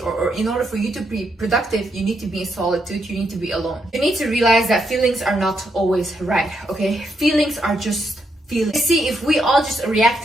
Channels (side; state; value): both; normal; correlation 0.79